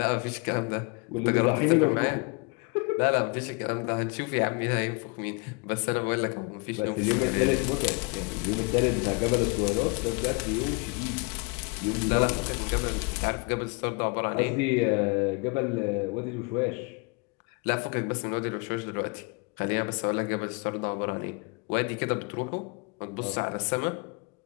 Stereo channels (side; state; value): right; quieter; 31.1 dB